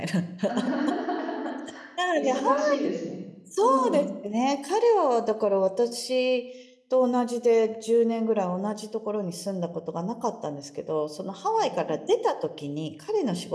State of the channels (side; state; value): both; identical; correlation 1.00